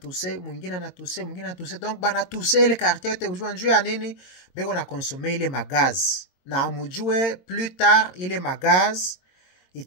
mwingine na tuse, mwingine na tuse. Donc bana tuse ile quartier yote ujua njuu ya nini? Beko na consommer ile magaz. Na amujue plus tard ile magaz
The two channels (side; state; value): right; late; 22 ms